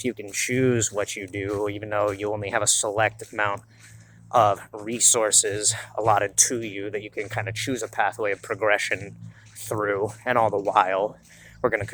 you can choose what you do, even though you only have a select amount of resources allotted to you that you can kind of choose a pathway of progression through, and all the while we're going to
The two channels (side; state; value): both; identical; correlation 1.00